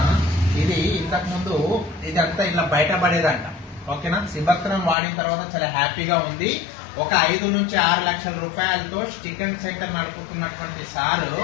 ఇది ఇంతకుముందు ఇదంతా ఇట్లా బయటపడేదంట, ఓకేనా. సిబత్రాన్ వాడిన తర్వాత చాలా హ్యాపీగా ఉంది. ఒక 5 నుంచి 6 లక్షల రూపాయలతో చికెన్ సెంటర్ నడుపుతున్నటువంటి సారు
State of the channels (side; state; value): right; drops out; at 5.0 s